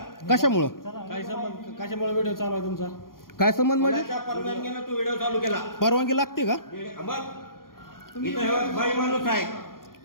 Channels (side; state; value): right; late; 0.91 ms